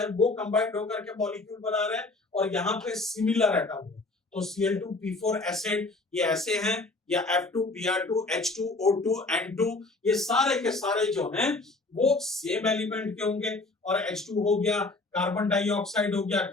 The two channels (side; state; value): right; quieter; 3.3 dB